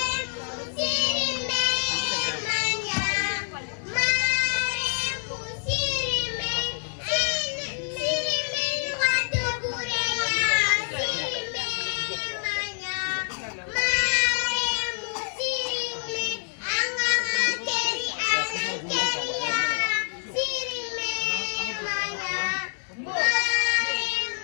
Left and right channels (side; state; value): right; silent; digital silence